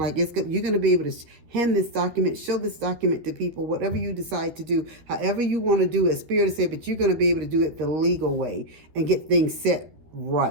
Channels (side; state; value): left; late; 13 ms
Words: you're going to be able to hand this document, show this document to people, whatever you decide to do, however you want to do it. Spirit is saying, but you're going to be able to do it the legal way and get things set